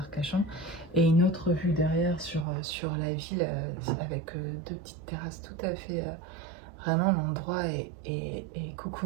et une autre vue derrière sur la ville avec deux petites terrasses tout à fait. Vraiment l'endroit est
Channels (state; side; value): drops out; left; at 2.5 s